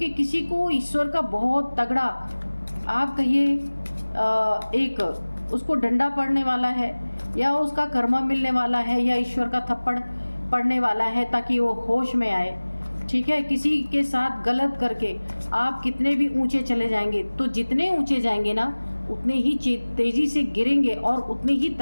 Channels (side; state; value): both; inverted; correlation -1.00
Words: किसी को ईश्वर का बहुत तगड़ा, आप कहिए एक उसको डंडा पड़ने वाला है, या उसका कर्मा मिलने वाला है, या ईश्वर का थप्पड़ पड़ने वाला है ताकि वो होश में आए, ठीक है। किसी के साथ गलत करके आप कितने भी ऊंचे चले जाएंगे, तो जितने ऊंचे जाएंगे ना उतने ही तेज़ी से गिरेंगे और उतनी ही